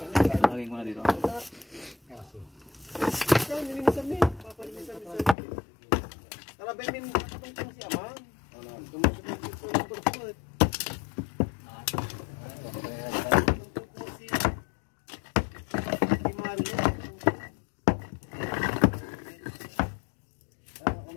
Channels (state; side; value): drops out; right; at 5.4 s